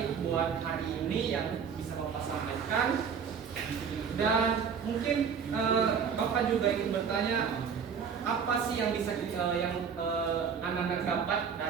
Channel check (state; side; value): quieter; left; 6.8 dB